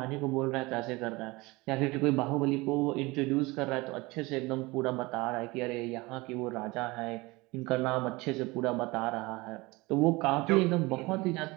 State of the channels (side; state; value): left; quieter; 23.0 dB